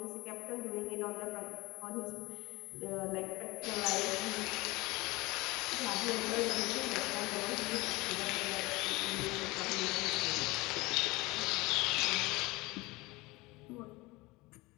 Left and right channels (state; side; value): quieter; right; 22.4 dB